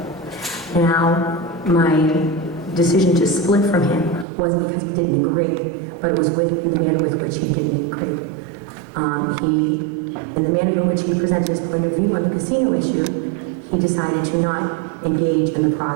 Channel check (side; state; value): left; drops out; at 4.2 s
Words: Now, my decision to split from him wasn't because we didn't agree, but it was with the manner with which he didn't agree. In the manner in which he presented his point of view on the casino issue, he decided to not engage in the